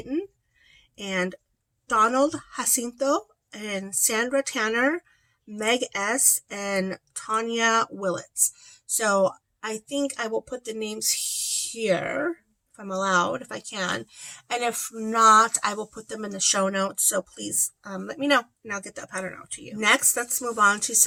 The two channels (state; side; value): identical; both; correlation 1.00